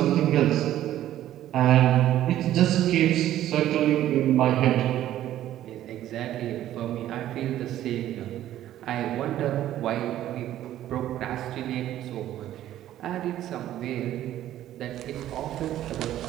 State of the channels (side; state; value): left; quieter; 12.8 dB